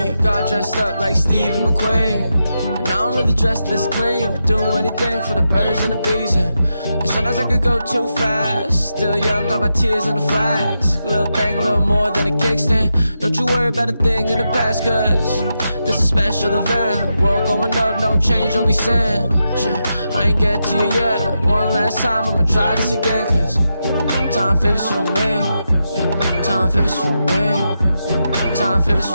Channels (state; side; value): inverted; both; correlation -0.86